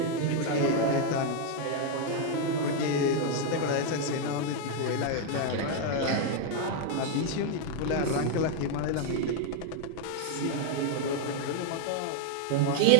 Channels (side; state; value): both; different; correlation 0.00